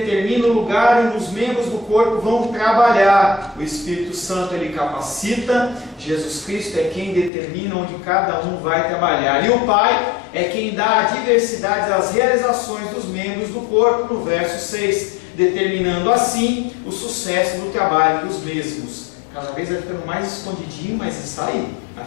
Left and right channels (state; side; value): drops out; right; at 7.3 s